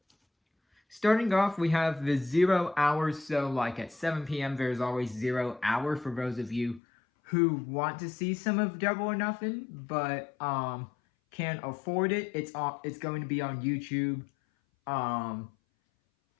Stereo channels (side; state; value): right; drops out; at 6.8 s